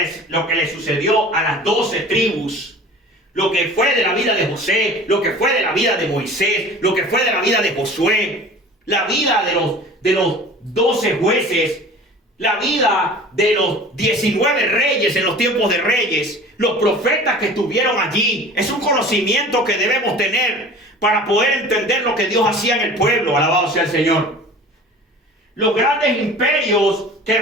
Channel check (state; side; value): normal; both; correlation 0.42